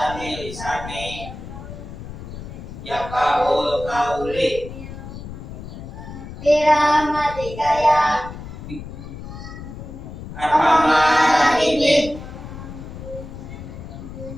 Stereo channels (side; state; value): left; noise; rumble, 11 dB below the sound